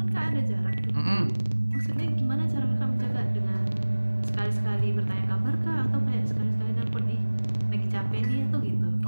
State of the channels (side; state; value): both; inverted; correlation -1.00